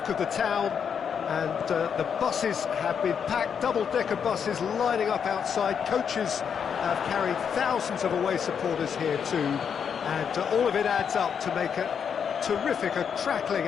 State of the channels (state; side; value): quieter; right; 7.3 dB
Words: of the town. And the buses have been packed, double-decker buses lining up outside. Coaches have carried thousands of away supporters here too. And all of it adds up to make a terrific, a crackling